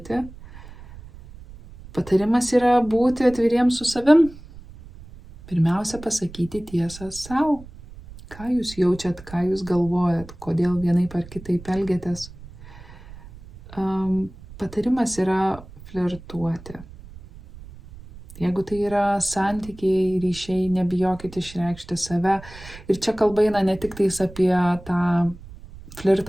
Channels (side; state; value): right; noise; rumble, 18 dB below the sound